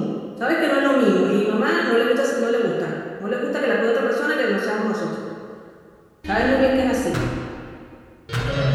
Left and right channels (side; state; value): both; identical; correlation 1.00